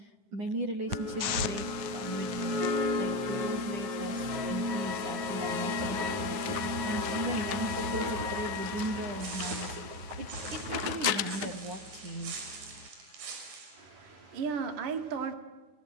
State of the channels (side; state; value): left; late; 9.4 ms